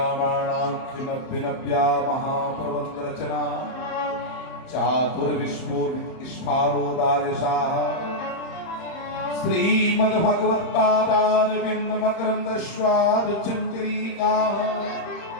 महाप्रबंध रचना चातुर्विश्वोदिष्पारोदार्यशाः श्रीमद्भगवत्पादारविन्द मकरन्द स्वादुचञ्चरीकाः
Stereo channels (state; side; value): late; right; 31 ms